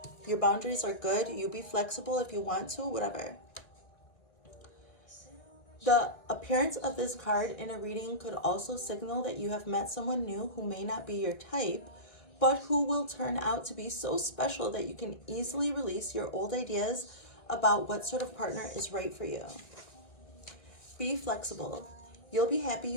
your boundaries are good. You be flexible if you want to, whatever. The appearance of this card in a reading could also signal that you have met someone new who may not be your type, but who will turn out to be so special that you can easily release your old ideas about what sort of partner is right for you. Be flexible. You'll be happy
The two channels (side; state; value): right; late; 2.0 ms